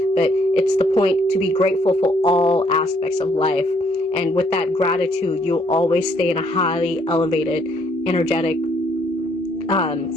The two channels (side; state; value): both; normal; correlation 0.68